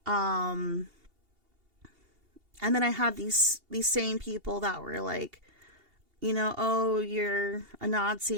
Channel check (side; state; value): left; late; 2.8 ms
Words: And then I had these same people that were like, oh, you're a Nazi,